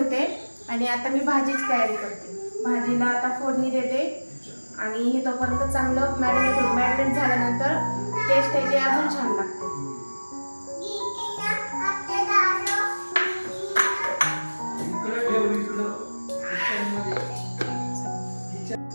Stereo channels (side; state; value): both; inverted; correlation -1.00